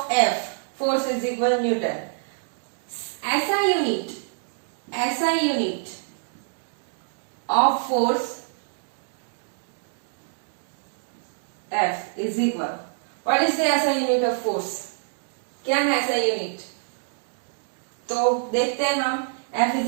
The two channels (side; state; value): left; silent; digital silence